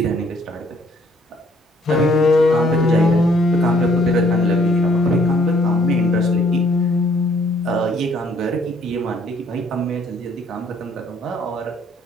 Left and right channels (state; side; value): normal; both; correlation 0.63